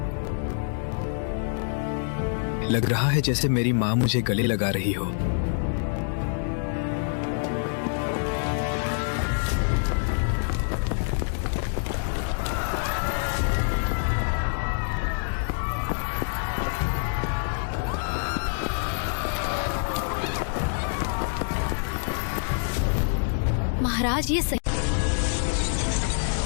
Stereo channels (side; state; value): right; silent; digital silence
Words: लग रहा है जैसे मेरी माँ मुझे गले लगा रही हो। महाराज, ये सही।